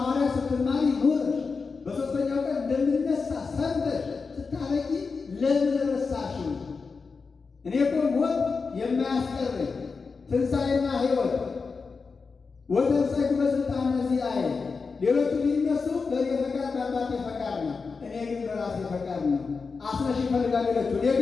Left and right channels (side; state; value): right; quieter; 4.8 dB